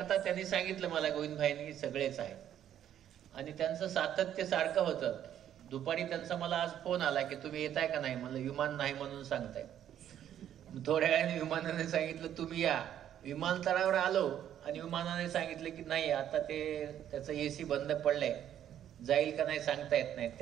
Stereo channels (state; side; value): quieter; left; 10.5 dB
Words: त्यांनी सांगितलं मला गोविंदभाईंनी सगळेच आहेत आणि त्यांचं सातत्य सारखं होतं. दुपारी त्यांचा मला आज फोन आला की तुम्ही येताय का नाही. मला विमान नाही म्हणून सांगताय. थोड्या वेळाने विमानाने सांगितलं तुम्ही या. विमानतळावर आलो आणि विमानाने सांगितलं की नाही आता त्याचं AC बंद पडलंय, जाईल का नाही सांगता येत नाही.